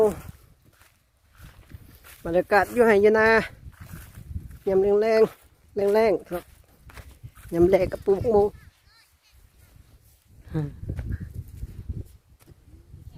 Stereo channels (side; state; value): both; identical; correlation 1.00